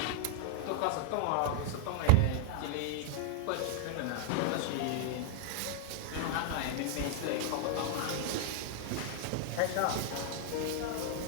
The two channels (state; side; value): different; both; correlation 0.00